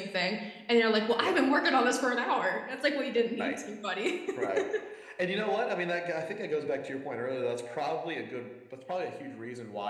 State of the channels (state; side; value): identical; both; correlation 1.00